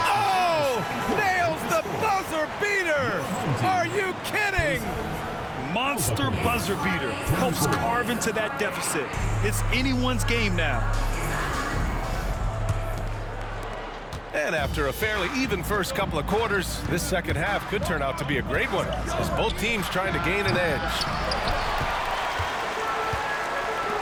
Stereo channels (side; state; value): both; identical; correlation 1.00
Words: Oh! Nails the buzzer beater! Are you kidding? Monster buzzer beater. Helps carve into that deficit. It's anyone's game now. And after a fairly even first couple of quarters, this second half could turn out to be a great one, as both teams trying to gain an edge.